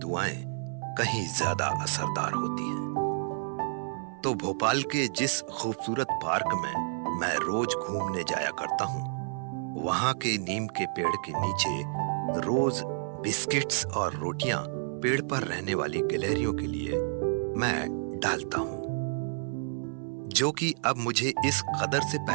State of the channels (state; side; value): silent; left; 58 dB below the other